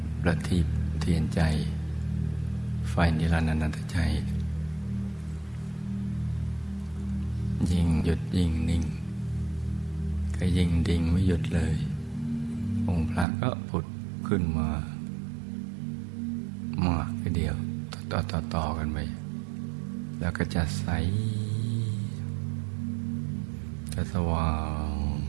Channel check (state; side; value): drops out; left; at 13.2 s